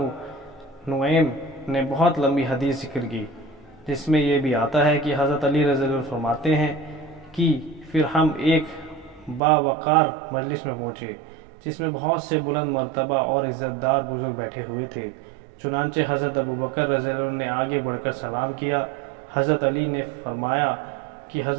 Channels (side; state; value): left; drops out; at 9.4 s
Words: نعیم نے بہت لمبی حدیث ذکر کی جس میں یہ بھی آتا ہے کہ حضرت علی رضی اللہ عنہ فرماتے ہیں کہ پھر ہم ایک باوقار مجلس میں پہنچے جس میں بہت سے بلند مرتبہ اور عزت دار بزرگ بیٹھے ہوئے تھے۔ چنانچہ حضرت ابو بکر رضی اللہ عنہ نے آگے بڑھ کر سلام کیا۔ حضرت علی نے فرمایا کہ